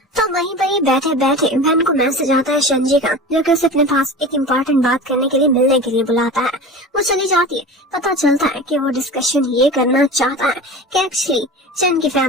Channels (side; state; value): both; normal; correlation 0.33